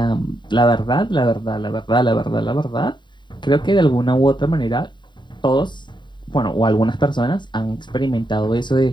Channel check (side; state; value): right; late; 0.22 ms